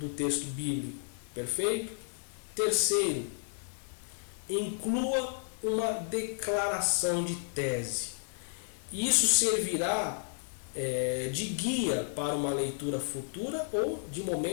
texto bíblico. Perfeito? Terceiro, inclua uma declaração de tese. Isso servirá de guia para uma leitura futura ou de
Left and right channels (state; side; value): silent; right; digital silence